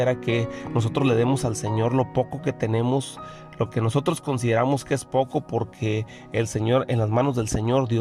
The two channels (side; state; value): both; identical; correlation 1.00